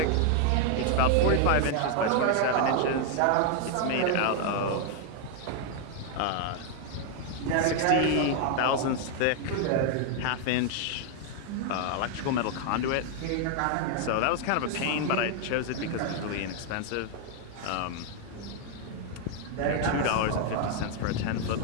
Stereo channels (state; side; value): different; both; correlation 0.00